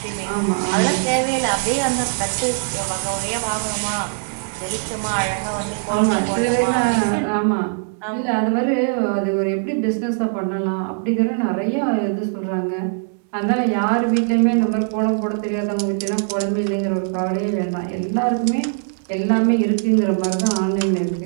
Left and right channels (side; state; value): left; silent; digital silence